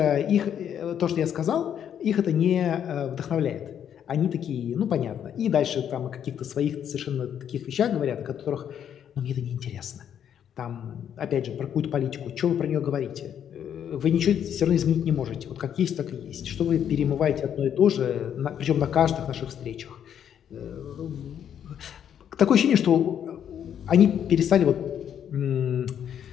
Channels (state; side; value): quieter; right; 9.2 dB